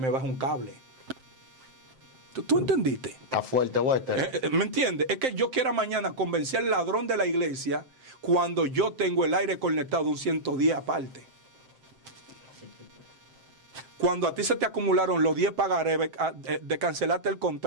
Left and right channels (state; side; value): late; left; 7.6 ms